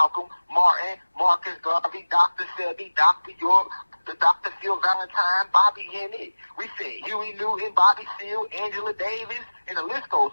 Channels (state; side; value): inverted; both; correlation -1.00